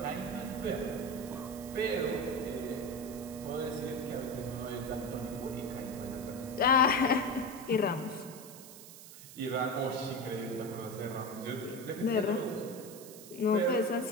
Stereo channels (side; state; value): right; noise; hiss, 16 dB below the sound